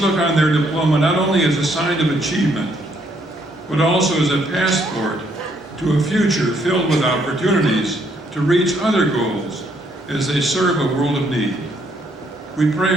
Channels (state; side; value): normal; both; correlation 0.70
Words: on their diploma not only as a sign of achievement, but also as a passport to a future filled with opportunities to reach other goals as they serve a world of need. We pray